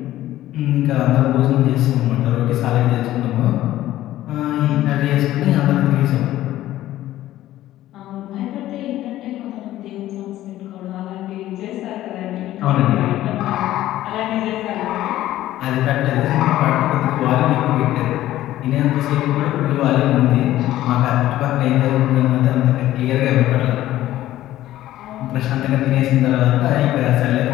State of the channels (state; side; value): quieter; right; 14.3 dB